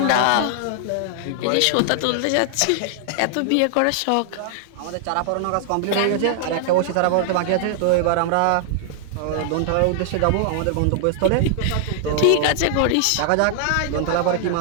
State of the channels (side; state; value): both; different; correlation -0.01